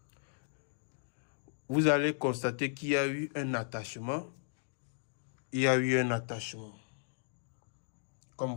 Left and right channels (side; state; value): right; silent; digital silence